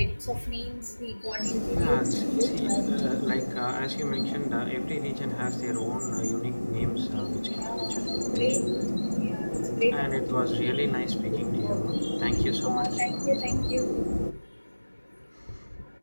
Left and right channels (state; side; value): inverted; both; correlation -1.00